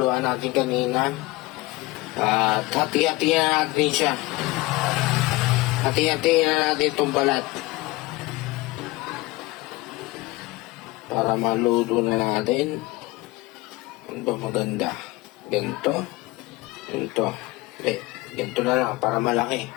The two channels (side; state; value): right; quieter; 20.8 dB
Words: natin kanina. At hati-hatihan natin siya. Hati-hatihan na natin tong balat. Para maluto na natin. Ano ba maganda? Ganito. Ganito. Ganito na lang para malaki.